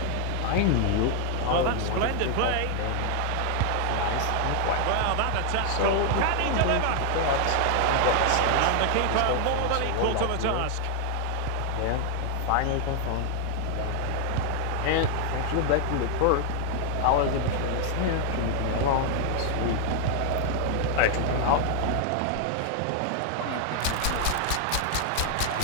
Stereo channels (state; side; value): different; both; correlation 0.00